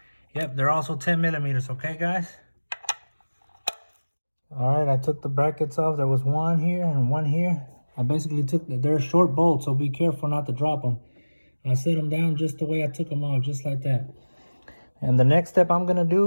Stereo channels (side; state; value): both; inverted; correlation -1.00